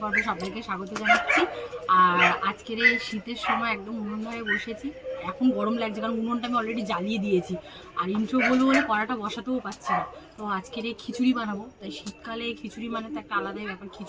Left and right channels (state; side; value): identical; both; correlation 1.00